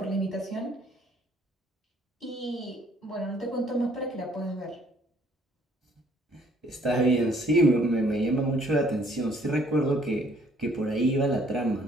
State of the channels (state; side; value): normal; both; correlation 0.62